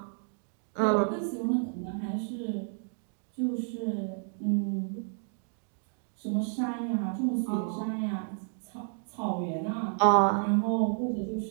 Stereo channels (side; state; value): left; silent; 57 dB below the other